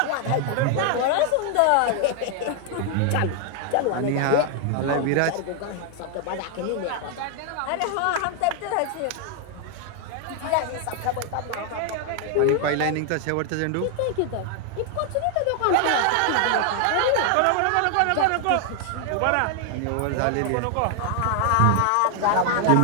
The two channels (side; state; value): both; different; correlation 0.00